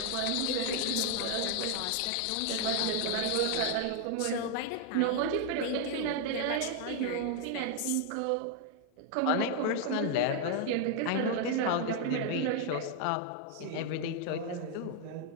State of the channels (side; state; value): both; different; correlation 0.01